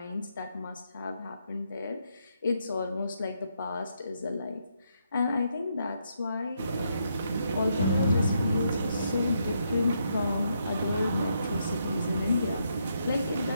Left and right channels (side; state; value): both; inverted; correlation -0.78